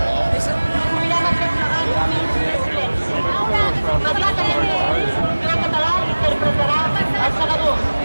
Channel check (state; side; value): inverted; both; correlation -1.00